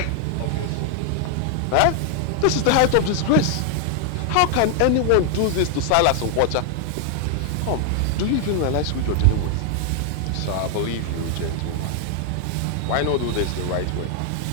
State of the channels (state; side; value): different; both; correlation 0.00